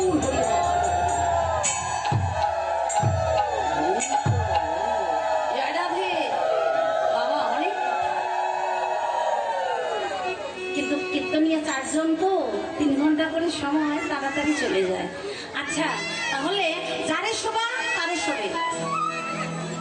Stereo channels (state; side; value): identical; both; correlation 1.00